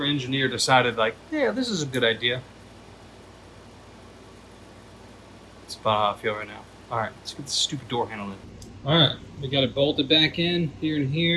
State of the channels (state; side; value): identical; both; correlation 1.00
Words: engineer decided, like, yeah, this is a good idea. That's about how I feel right now. All right, let's get this stupid door handle in. All right, we got it bolted back in here and